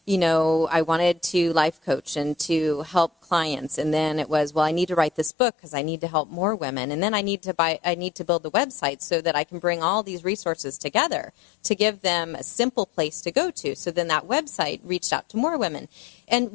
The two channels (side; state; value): right; drops out; at 5.3 s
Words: wanted to life coach and to help clients, and then it was, I need to write this book because I need to help more women, and then I need to build the website so that I can bring all these resources together to give them a simple place to go to. So then that website reached out to more women. And